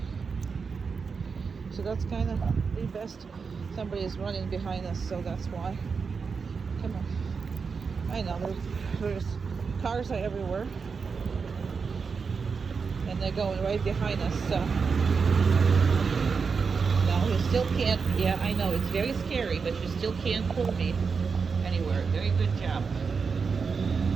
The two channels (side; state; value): left; quieter; 5.3 dB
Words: So that's kind of the best. Somebody is running behind us, so that's why. Come on. I know there's cars are everywhere, and they're going right behind us. So no, you still can't. Yeah, I know it's very scary, but you still can't pull me anywhere. Very good job.